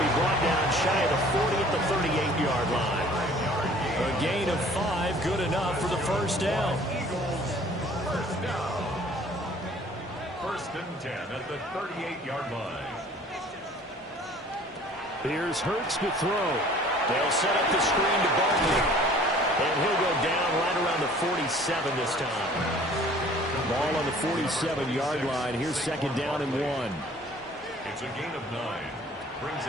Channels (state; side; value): normal; both; correlation 0.52